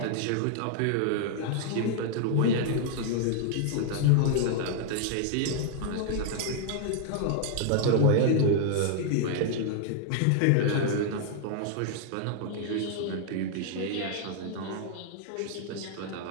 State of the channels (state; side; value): different; both; correlation 0.00